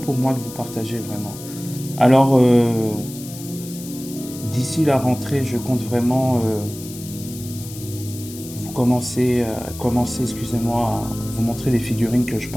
moi de vous partager vraiment. Alors d'ici la rentrée, je compte vraiment commencer, excusez-moi, à vous montrer les figurines que je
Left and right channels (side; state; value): left; noise; hiss, 14 dB below the sound